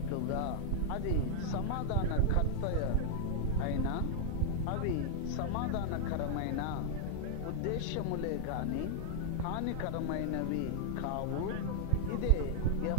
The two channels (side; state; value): both; different; correlation -0.01